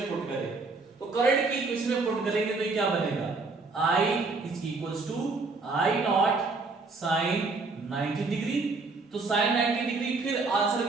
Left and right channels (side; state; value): left; quieter; 3.9 dB